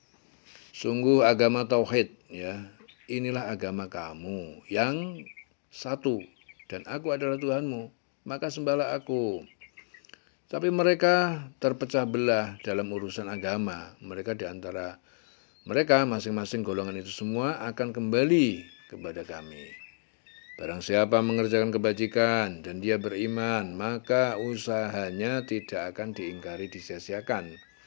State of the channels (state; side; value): silent; right; digital silence